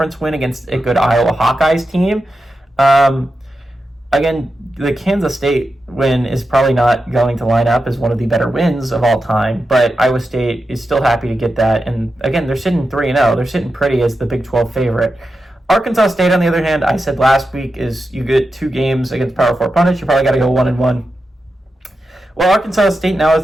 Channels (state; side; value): normal; both; correlation 0.90